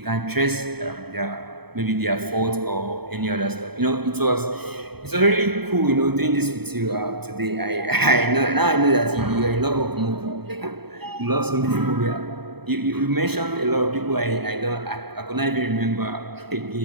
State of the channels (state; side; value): late; left; 0.97 ms